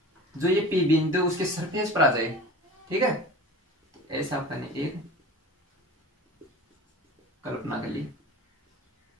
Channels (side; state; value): both; normal; correlation 0.37